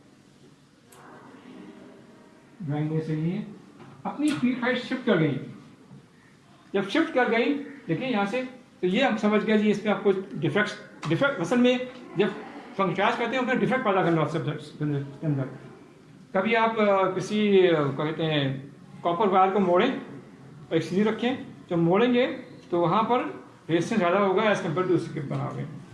ड्राइंग में सही है, अपनी पीक हाइट शिफ्ट कर गई। जब शिफ्ट कर गई, देखिए यहाँ से, तो ये हम समझ गए जी इसमें आपको डिफेक्ट असल में जब फंक्शनाइज करते हैं उसमें डिफेक्ट पैदा करना सब्जेक्ट के अंदर। कभी आप किसी कहते हैं कॉपर वायर को मोड़ें और एक सीधी रखें, जब मोड़ेंगे तो वहाँ पर रेजिस्टेंस ज़्यादा होगा एज कम्पेयर टू उसके बनाओगे,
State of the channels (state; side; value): identical; both; correlation 1.00